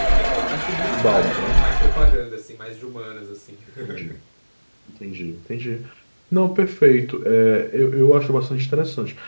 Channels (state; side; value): inverted; both; correlation -1.00